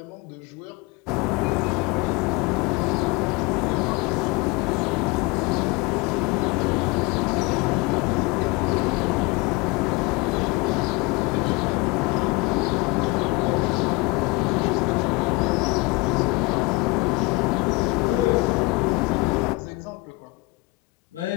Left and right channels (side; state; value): right; quieter; 24.2 dB